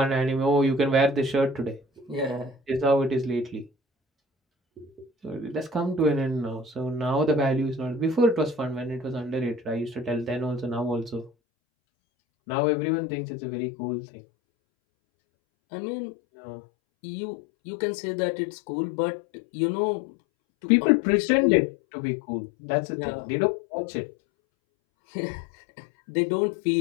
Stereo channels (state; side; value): drops out; right; at 11.3 s